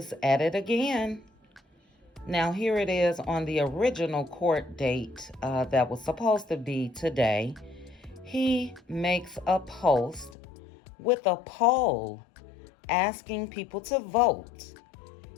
at it again. Now, here it is on the original court date that was supposed to be today. He makes a post with a poll asking people to vote.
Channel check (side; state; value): right; drops out; at 10.4 s